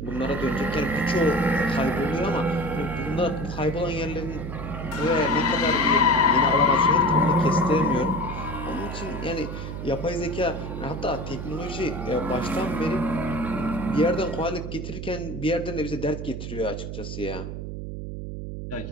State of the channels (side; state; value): right; noise; hum, 7 dB below the sound